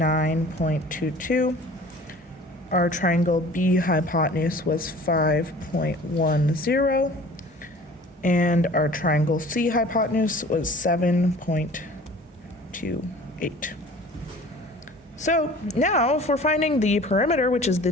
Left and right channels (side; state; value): both; normal; correlation 0.46